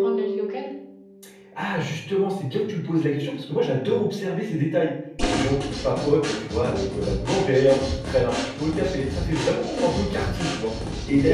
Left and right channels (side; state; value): both; identical; correlation 1.00